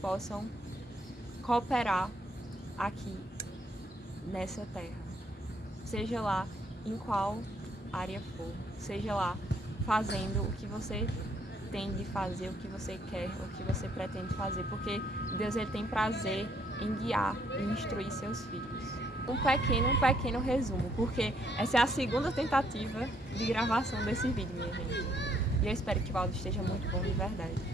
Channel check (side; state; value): both; normal; correlation 0.69